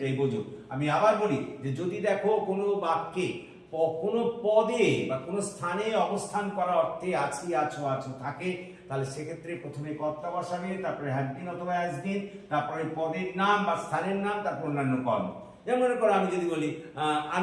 বোঝো। আমি আবার বলি যে যদি দেখো কোনো বাক্যে কোনো পদে বা কোনো স্থানে অবস্থান করা অর্থে আছি, আছো, আছো থাকে, তাহলে সেক্ষেত্রে প্রথমে কর্তা বসাবে, তারপরে হ্যাভ বিন অথবা হ্যাজ বিন, তারপরে পদের নাম বা স্থানের নাম, তারপর অন্যান্য কর্ম। যেমন মনে করো আমি যদি বলি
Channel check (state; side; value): identical; both; correlation 1.00